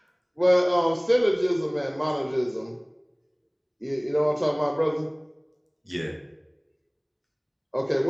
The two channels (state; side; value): identical; both; correlation 1.00